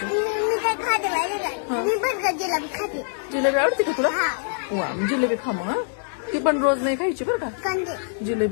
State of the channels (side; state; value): right; silent; digital silence